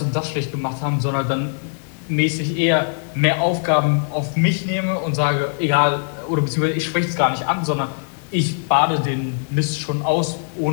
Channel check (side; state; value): right; silent; 65 dB below the other